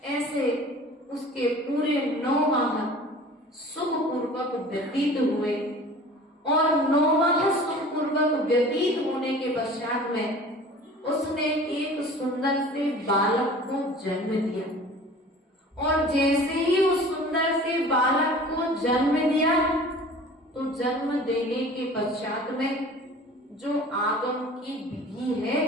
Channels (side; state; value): both; normal; correlation 0.43